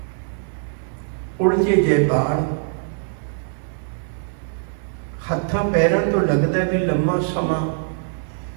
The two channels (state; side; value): silent; left; 64 dB below the other